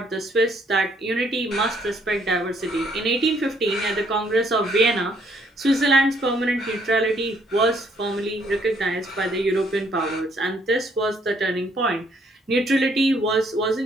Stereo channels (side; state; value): both; normal; correlation 0.68